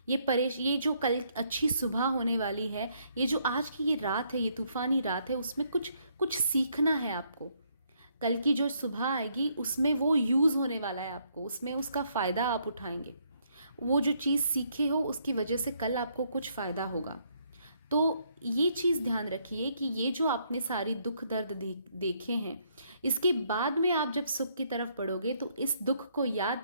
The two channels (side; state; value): both; inverted; correlation -0.71